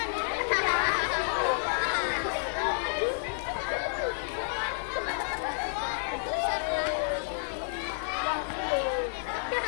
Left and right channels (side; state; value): right; silent; digital silence